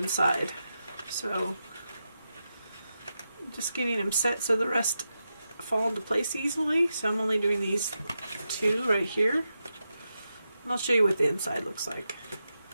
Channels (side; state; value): both; inverted; correlation -0.88